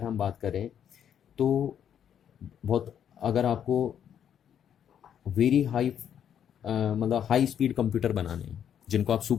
हम बात करें तो बहुत, अगर आपको वेरी हाई मतलब हाई स्पीड कंप्यूटर बनाने हैं जिनको आप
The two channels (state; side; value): quieter; right; 9.1 dB